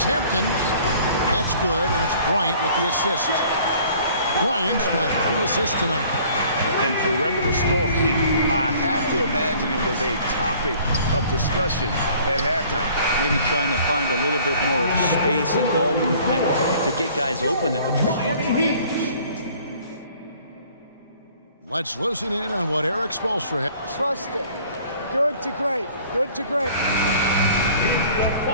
Hampton. That's good, and it's Bryant with the assist. Bryant's got 3 assists tonight. And perimeter scoring, I have to imagine it was a topic of discussion at halftime. Maybe trying to find a little bit more space and ball movement to get guys open at the three-point line. Let's listen in on what Eric Spoelstra had. Trust it. Good to great. Good to great.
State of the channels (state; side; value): inverted; both; correlation -0.53